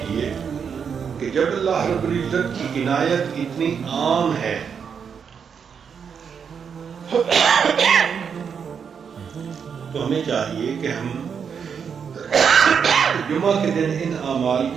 کہ جب اللہ رب العزت کی عنایت اتنی عام ہے تو ہمیں چاہیے کہ ہم جمعہ کے دن ان اعمال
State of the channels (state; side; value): quieter; left; 6.8 dB